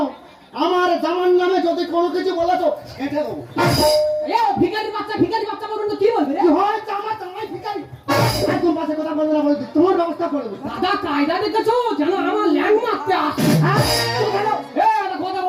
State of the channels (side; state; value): both; identical; correlation 1.00